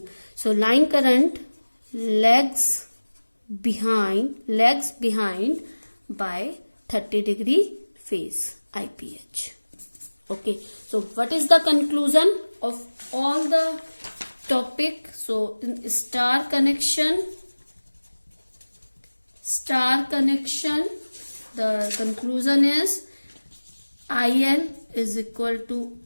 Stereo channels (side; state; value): both; inverted; correlation -1.00